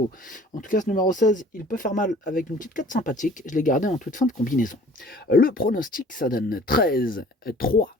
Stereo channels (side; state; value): both; normal; correlation 0.51